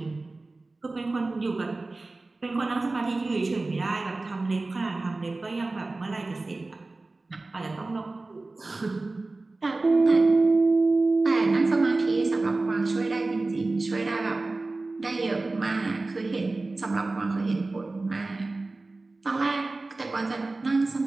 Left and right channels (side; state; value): left; quieter; 3.3 dB